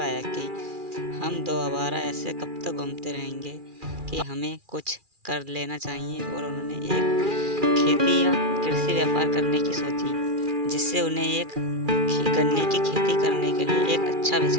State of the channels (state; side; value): late; left; 2.4 ms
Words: कि हम दो आवारा ऐसे कब तक घूमते रहेंगे कि हमें कुछ कर लेना चाहिए। और उन्होंने एक खेती या कृषि व्यापार करने की सोची, जिससे उन्हें एक गन्ने की खेती करने के लिए एक अच्छा